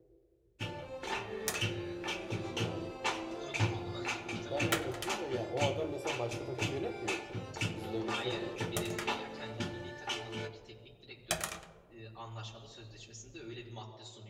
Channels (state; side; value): identical; both; correlation 1.00